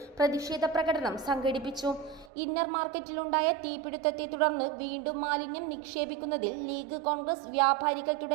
പ്രതിഷേധ പ്രകടനം സംഘടിപ്പിച്ചു. ഇന്നർ മാർക്കറ്റിലുണ്ടായ തീപിടുത്തത്തെ തുടർന്ന് വീണ്ടും മാലിന്യം നിക്ഷേപിക്കുന്നതിൽ ലീഗ്, കോൺഗ്രസ്, വ്യാപാരികൾ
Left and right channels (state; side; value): drops out; left; at 2.3 s